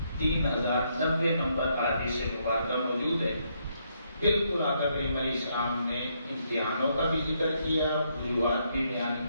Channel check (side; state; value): both; inverted; correlation -0.75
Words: 3090 نمبر حدیث مبارکہ موجود ہے۔ بالکل آقا کریم علیہ السلام نے امتحانوں کا بھی ذکر کیا، وجوہات بھی بیان